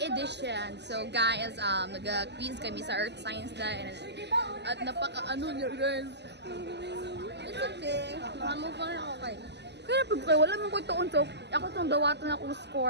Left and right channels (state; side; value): late; left; 0.50 ms